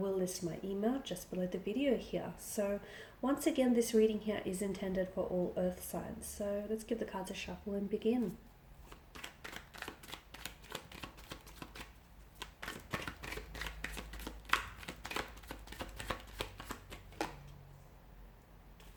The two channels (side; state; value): both; identical; correlation 1.00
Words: list my email just below the video here. So once again, this reading here is intended for all earth signs. So let's give the cards a shuffle and begin.